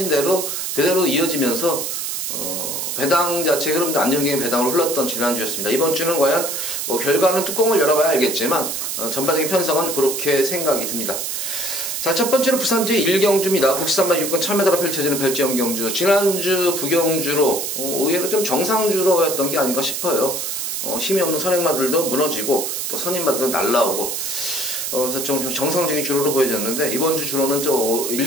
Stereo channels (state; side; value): noise; right; hiss, 3 dB below the sound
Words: 대로 그대로 이어지면서 배당 자체 흐름도 안정적인 배당으로 흘렀던 지난주였습니다. 이번 주는 과연 결과는 뚜껑을 열어봐야 알겠지만 전반적인 편성은 그렇게 생각이 듭니다. 자, 첫 번째로 부산지 1경주입니다. 국산만 6권 1000m로 펼쳐지는 별지형 경주. 지난주 부경주로 의외로 좀 정상주로였던 게 아닌가 싶어요. 힘이 없는 선행마들도 무너지고 또 선임마들도 날라오고, 그래서 좀 정상적인 주로로 보여졌는데, 이번 주 주로는